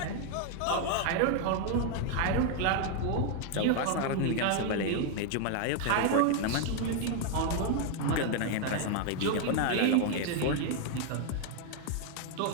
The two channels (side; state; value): both; different; correlation 0.00